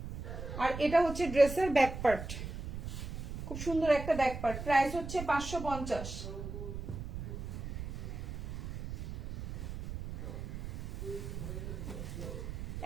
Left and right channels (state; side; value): noise; right; rumble, 7 dB below the sound